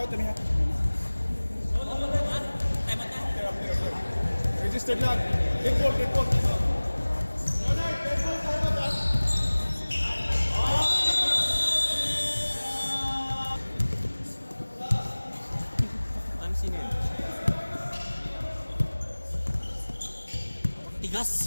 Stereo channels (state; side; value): inverted; both; correlation -1.00